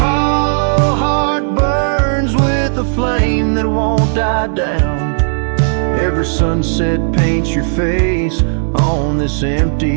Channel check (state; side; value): silent; left; digital silence